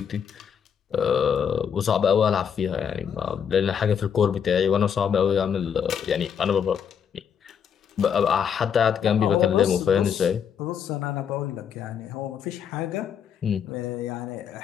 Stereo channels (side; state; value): right; quieter; 7.7 dB